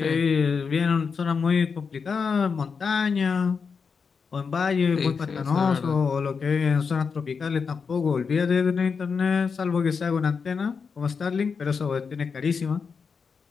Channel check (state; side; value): quieter; right; 5.6 dB